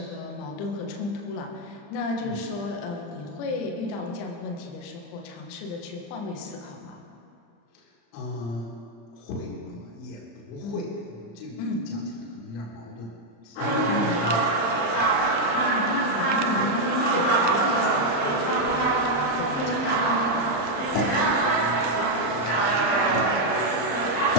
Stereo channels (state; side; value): late; right; 35 ms